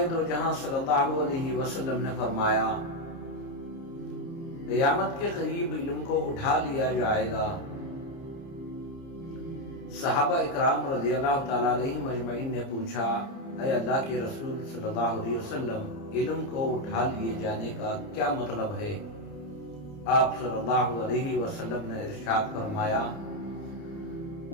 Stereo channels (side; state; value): right; late; 30 ms